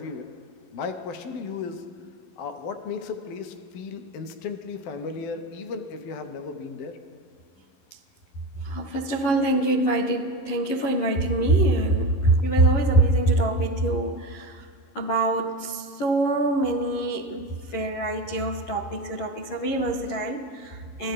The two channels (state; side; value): late; right; 11 ms